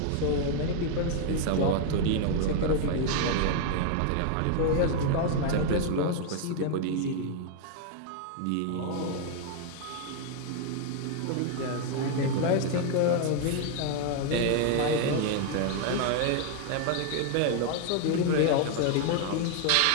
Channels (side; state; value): both; different; correlation 0.00